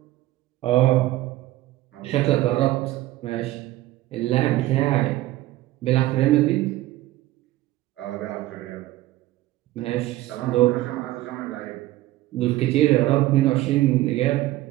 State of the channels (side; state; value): left; quieter; 16.4 dB